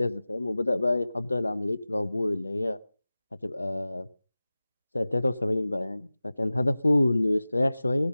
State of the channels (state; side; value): inverted; both; correlation -0.98